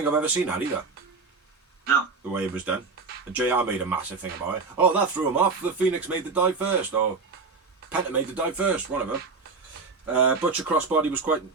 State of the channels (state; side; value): quieter; left; 4.4 dB